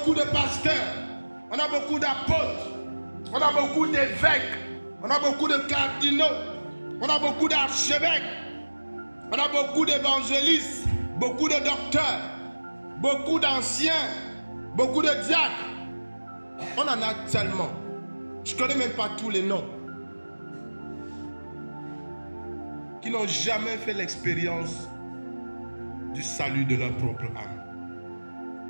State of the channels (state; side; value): inverted; both; correlation -1.00